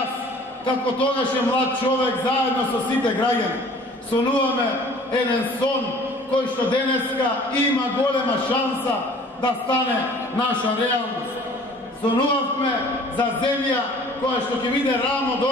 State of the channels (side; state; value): both; normal; correlation 0.50